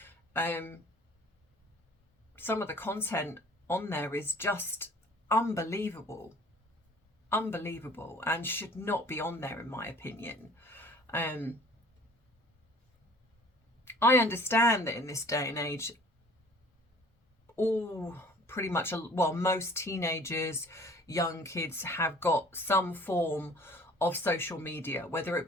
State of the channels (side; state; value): both; normal; correlation 0.51